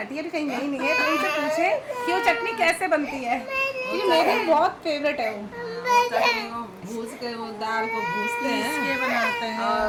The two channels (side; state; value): both; identical; correlation 1.00